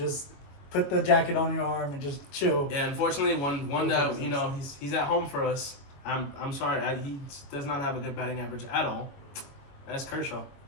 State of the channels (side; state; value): right; late; 22 ms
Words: put the jacket on your arm and just chill. Yeah, unfortunately, one that he's at home for us. I'm sorry, he does not have a good batting average at all. That's Kershaw.